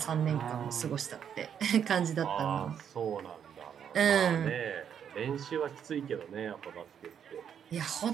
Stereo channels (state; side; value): quieter; left; 8.3 dB